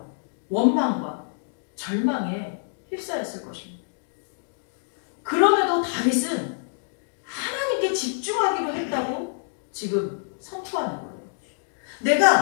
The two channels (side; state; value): right; silent; digital silence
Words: 원망과 절망에 휩싸였을 것입니다. 그럼에도 다윗은 하나님께 집중하기로 했다고 지금 선포하는 거예요.